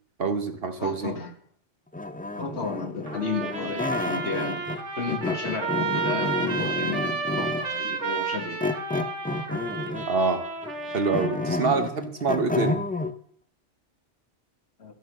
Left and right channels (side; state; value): both; normal; correlation 0.13